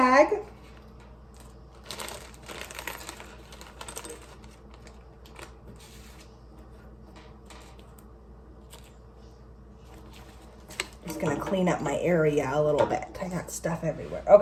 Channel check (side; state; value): both; identical; correlation 1.00